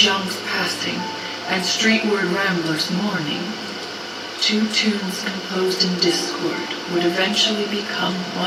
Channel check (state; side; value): identical; both; correlation 1.00